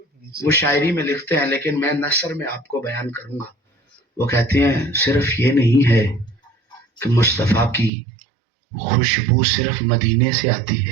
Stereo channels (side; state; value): left; drops out; at 7.9 s